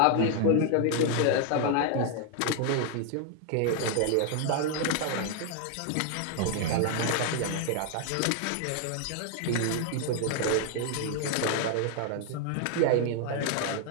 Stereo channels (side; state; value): both; different; correlation 0.00